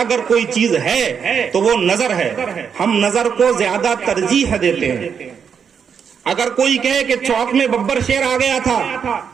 کوئی چیز ہے تو وہ نظر ہے۔ ہم نظر کو زیادہ ترجیح دیتے ہیں۔ اگر کوئی کہے کہ چوک میں ببر شیر آ گیا تھا،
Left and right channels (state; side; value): quieter; left; 7.0 dB